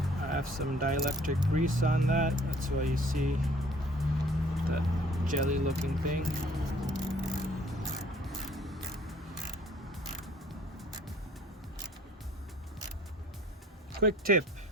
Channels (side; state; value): both; normal; correlation 0.56